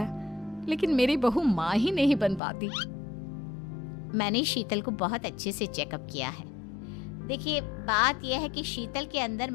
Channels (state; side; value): drops out; right; at 2.4 s